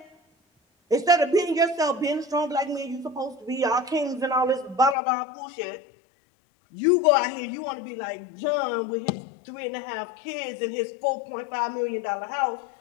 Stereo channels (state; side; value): drops out; right; at 5.0 s